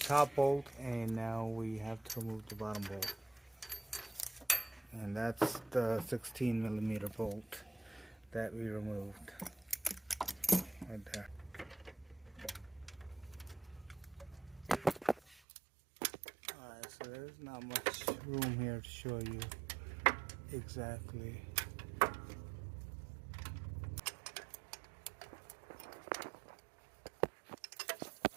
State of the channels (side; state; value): left; drops out; at 15.4 s